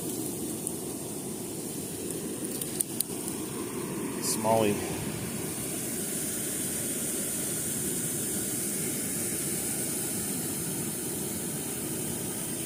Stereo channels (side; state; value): both; identical; correlation 1.00